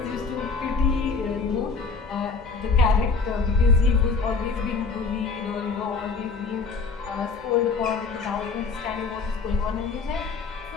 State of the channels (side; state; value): right; quieter; 4.6 dB